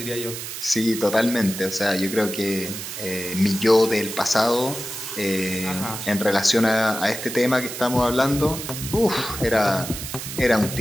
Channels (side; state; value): right; noise; hiss, 8 dB below the sound